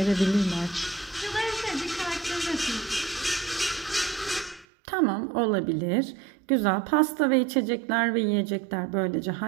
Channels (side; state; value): left; drops out; at 4.7 s